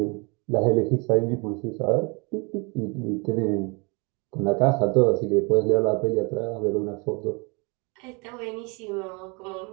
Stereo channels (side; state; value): left; quieter; 30.2 dB